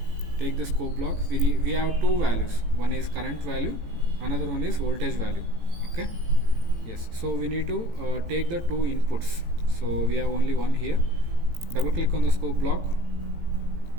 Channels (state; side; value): late; left; 18 ms